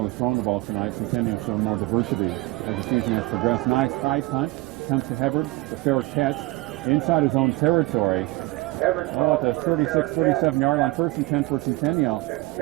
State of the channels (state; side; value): quieter; left; 21.4 dB